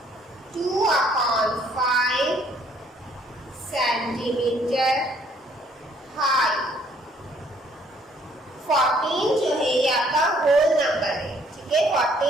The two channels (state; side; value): normal; both; correlation 0.63